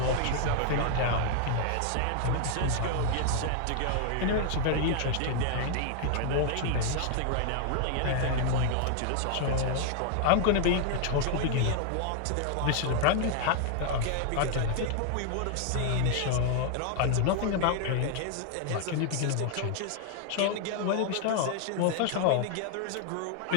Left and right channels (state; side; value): different; both; correlation 0.00